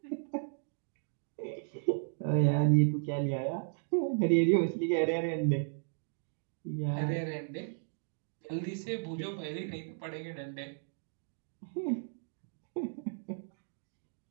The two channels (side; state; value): left; silent; digital silence